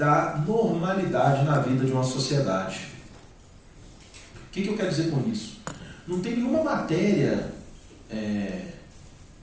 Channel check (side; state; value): both; identical; correlation 1.00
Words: normalidade na vida de uma sociedade. O que eu quero dizer com isso? Não tem nenhuma matéria